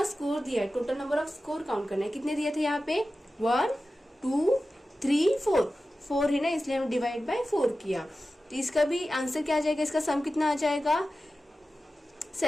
स्कोर दिया है, total number off score count करना है। कितने दिए थे यहाँ पे 1 2 3 4 4 है ना, इसलिए हम डिवाइड बाय 4 किया। तो इसका भी आंसर क्या आ जाएगा, इसका सम कितना आ जाएगा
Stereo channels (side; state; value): both; normal; correlation 0.94